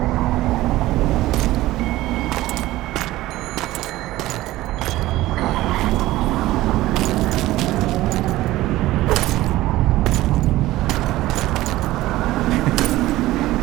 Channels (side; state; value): left; quieter; 16.7 dB